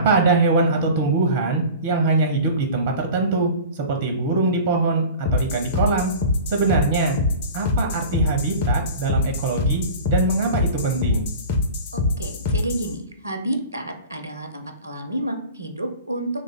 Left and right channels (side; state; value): both; inverted; correlation -0.38